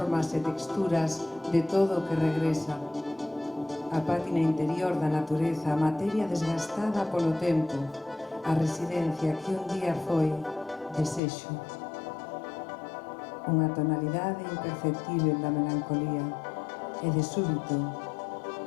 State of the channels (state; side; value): drops out; right; at 11.2 s